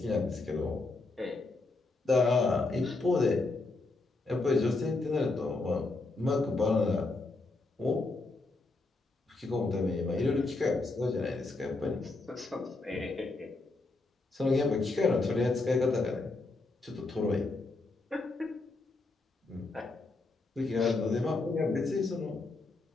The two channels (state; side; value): quieter; right; 3.4 dB